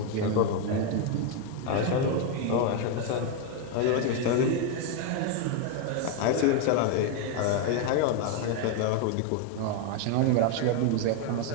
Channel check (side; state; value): both; different; correlation 0.01